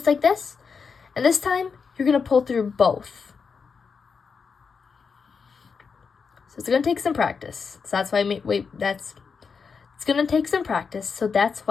like this. And this time, you're going to pull through both. So it's going to take some practice. So that's why it's going to take some practice. So that's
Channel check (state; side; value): quieter; right; 5.6 dB